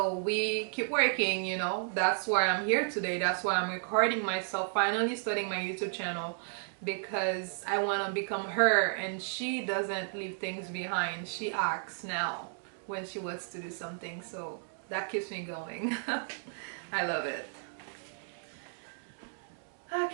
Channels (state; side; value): silent; left; digital silence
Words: we keep working, you know. That's why I'm here today. That's why I'm recording myself, finally starting my YouTube channel, because I want to become her, and she doesn't leave things behind. She acts now when she wants to do something. So that keeps me going. I love it.